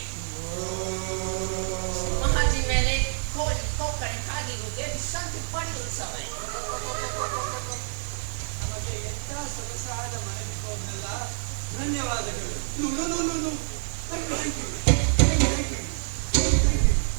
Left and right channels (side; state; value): left; silent; digital silence